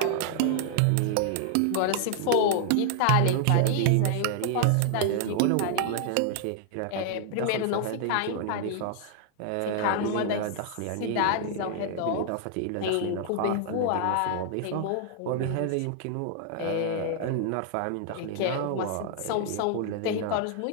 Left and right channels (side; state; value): both; different; correlation 0.00